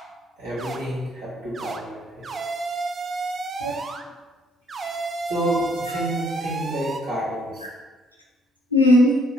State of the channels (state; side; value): normal; both; correlation 0.66